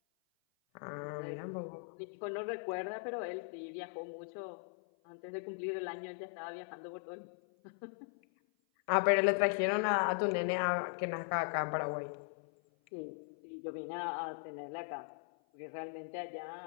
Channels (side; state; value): right; silent; 52 dB below the other